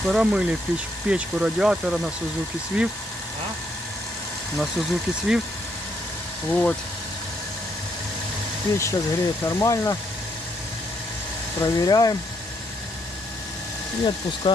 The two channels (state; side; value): normal; both; correlation 0.74